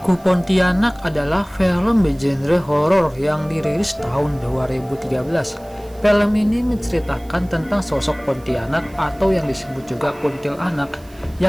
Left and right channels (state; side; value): noise; right; hiss, 26 dB below the sound